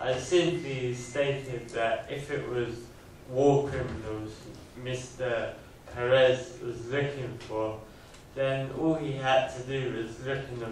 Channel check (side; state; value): both; identical; correlation 1.00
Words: simply stated that if it was war criminals Mr. Perez was looking for, then all he had to do was look in the